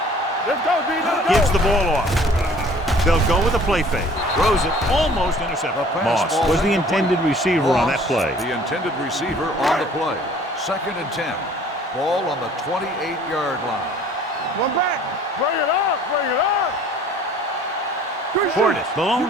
Let's go, D. Let's go. Gives the ball off. They'll go with a play fake. Throws it, almost intercepted. Moss was the intended receiver on that play. The intended receiver on the play. 2nd and 10. Ball on the 28-yard line. One back. Bring it up. Portis, the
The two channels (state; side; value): normal; both; correlation 0.52